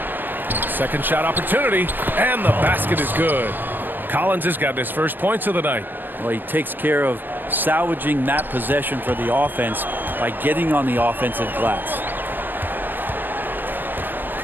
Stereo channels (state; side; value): late; left; 0.093 ms